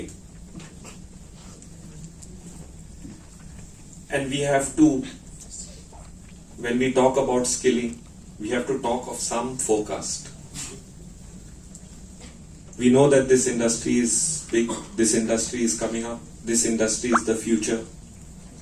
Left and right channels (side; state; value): both; identical; correlation 1.00